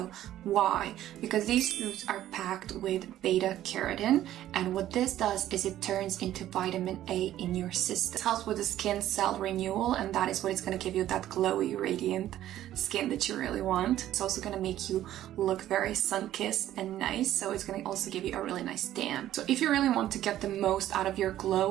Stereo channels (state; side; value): quieter; left; 12.9 dB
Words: Why? Because these foods are packed with beta carotene, and what this does is it turns into vitamin A in your system. It helps with the skin cell renewal, and that is what is going to give you that glowy, radiant skin that you really want. It's also going to make you look very sun-kissed and nice, so it's going to also give you a really nice tan. So if you really want to get the most out of your